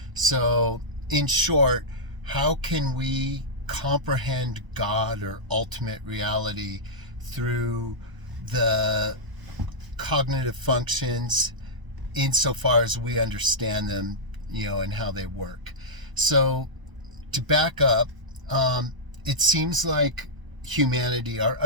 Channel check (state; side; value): late; left; 1.0 ms